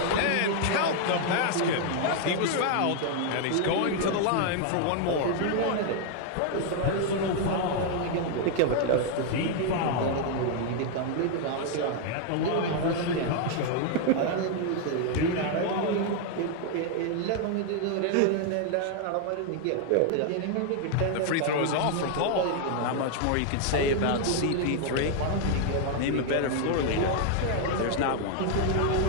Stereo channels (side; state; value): both; different; correlation 0.00